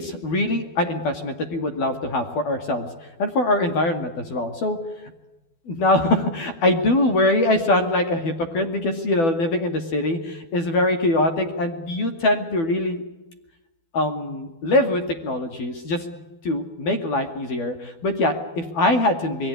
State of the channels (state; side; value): late; right; 12 ms